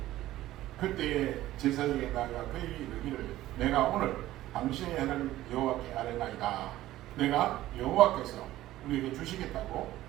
그때 제사장에게 나아가 그에게 이르기를 내가 오늘 당신의 하나님 여호와께 아뢰나이다. 내가 여호와께서 우리에게 주시겠다고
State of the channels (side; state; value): left; quieter; 15.0 dB